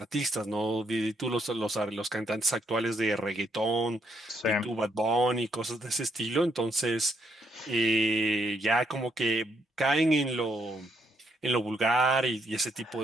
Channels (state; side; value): normal; both; correlation 0.75